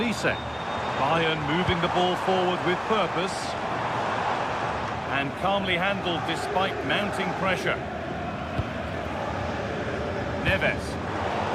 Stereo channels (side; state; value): both; identical; correlation 1.00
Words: Bayern moving the ball forward with purpose. And calmly handled despite mounting pressure. Neves.